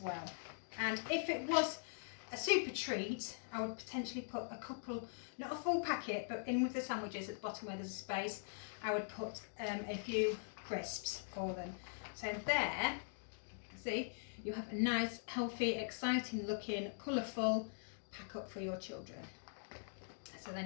well. And if it was a super treat, I would potentially put a couple, not a full packet, but in with the sandwiches at the bottom where there's a space, I would put a few crisps for them. So there, see, you have a nice, healthy, exciting looking, colourful pack up for your children. So then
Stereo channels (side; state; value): right; silent; digital silence